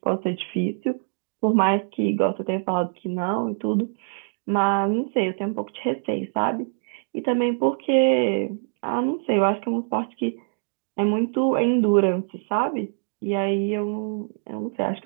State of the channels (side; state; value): left; silent; digital silence